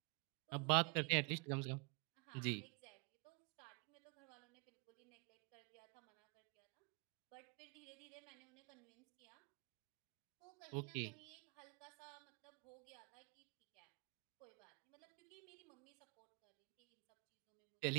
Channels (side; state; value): left; quieter; 33.0 dB